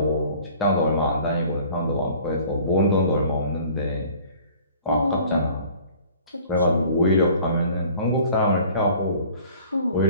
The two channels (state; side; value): inverted; both; correlation -0.50